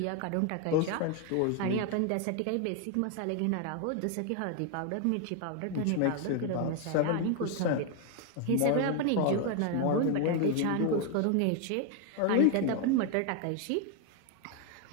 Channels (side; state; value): both; different; correlation 0.01